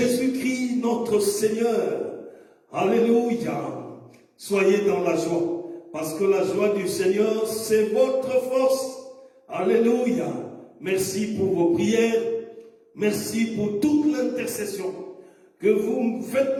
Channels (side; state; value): both; identical; correlation 1.00